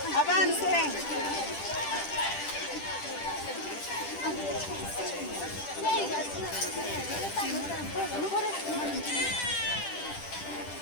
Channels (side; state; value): right; late; 10 ms